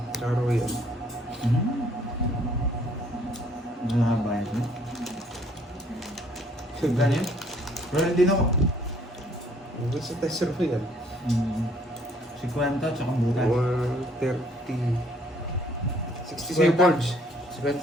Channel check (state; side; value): normal; both; correlation 0.62